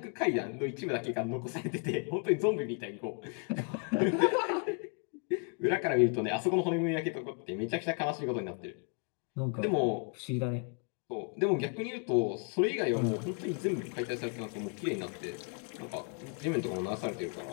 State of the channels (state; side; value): quieter; right; 38.0 dB